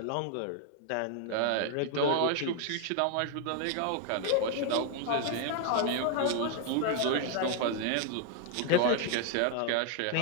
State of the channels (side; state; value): both; different; correlation 0.00